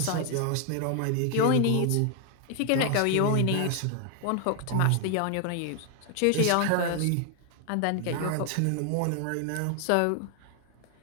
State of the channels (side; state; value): both; different; correlation 0.00